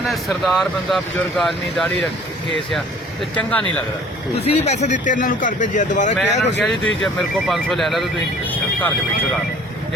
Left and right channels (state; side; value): normal; both; correlation 0.51